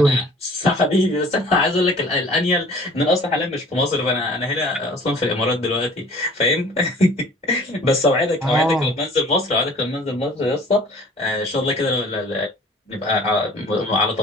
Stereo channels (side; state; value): both; normal; correlation 0.49